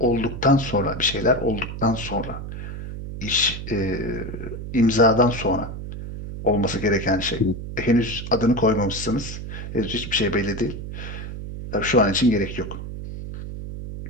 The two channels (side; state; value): right; noise; hum, 8 dB below the sound